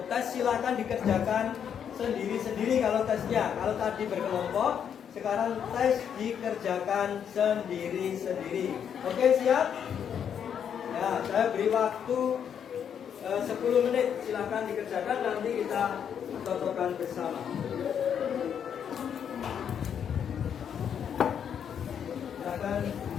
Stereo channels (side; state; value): right; quieter; 8.2 dB